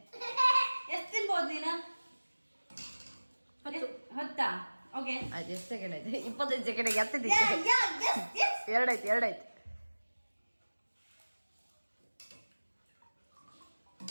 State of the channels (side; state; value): both; inverted; correlation -1.00